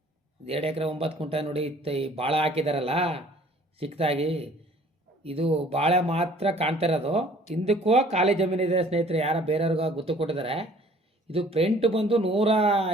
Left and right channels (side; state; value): both; normal; correlation 0.54